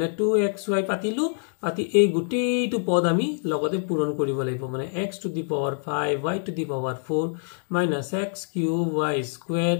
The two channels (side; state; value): right; silent; digital silence